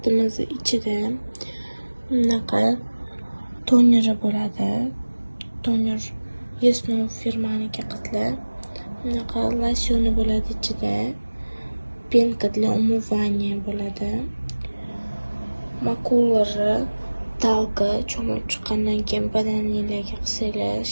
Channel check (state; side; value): inverted; both; correlation -1.00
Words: ichida bunaqa toneri bo'ladi. Toner Yesno firmaniki qizlar. Bunaqa losyoni bo'ladi ichida. Penka для умывания bo'ladi. Makulari talka cho'mib chiqqandan keyin badaningizga qilsanglar